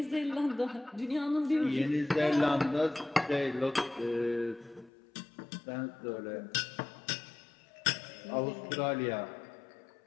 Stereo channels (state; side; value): drops out; right; at 4.9 s